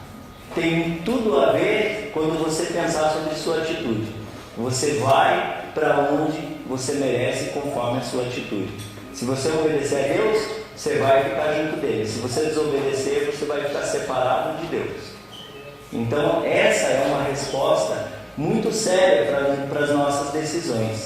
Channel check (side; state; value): both; identical; correlation 1.00